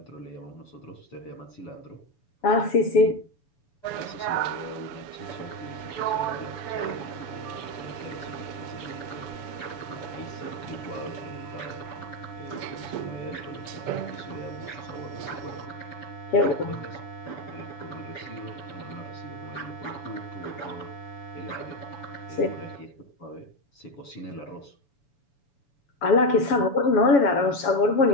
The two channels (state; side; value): late; right; 7.2 ms